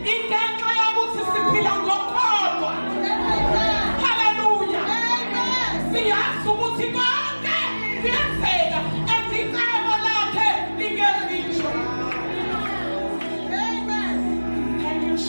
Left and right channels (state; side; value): inverted; both; correlation -1.00